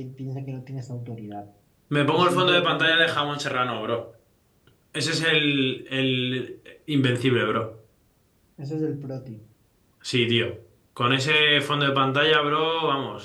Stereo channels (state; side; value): identical; both; correlation 1.00